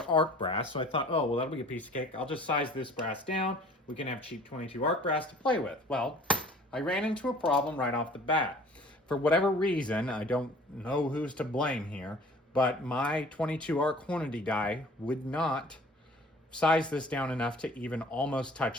arc brass, so I thought, oh, well, that'll be a piece of cake. I'll just size this brass down. We can have cheap 22 arc brass to play with. Well, I ran into a problem right off the bat. For whatever reason, I don't know who's to blame here, but my 22 arc Hornady die would not size this down enough to even almost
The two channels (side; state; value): both; normal; correlation 0.50